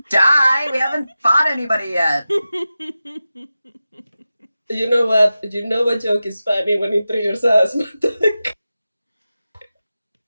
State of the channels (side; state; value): both; inverted; correlation -0.93